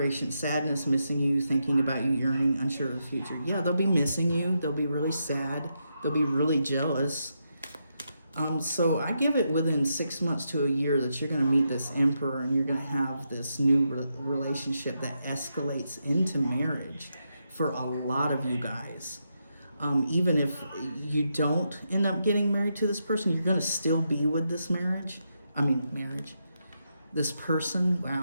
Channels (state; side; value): inverted; both; correlation -0.83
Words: sadness, missing you, thinking about you, yearning, unsure of the future. Yeah, they'll be missing you. They'll be really sad. They'll be really jealous. So I give it within 6 months to a year that you're going to meet this Emperor, and you're going to have this new relationship that escalates into marriage for a lot of you guys. Even if you don't end up getting married to this person, you're going to still be with this marriage. This person,